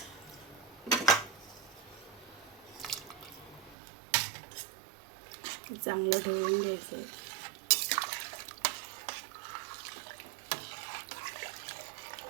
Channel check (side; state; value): left; drops out; at 3.8 s